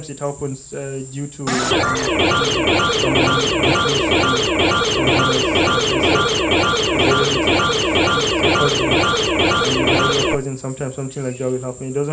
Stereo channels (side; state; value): both; identical; correlation 1.00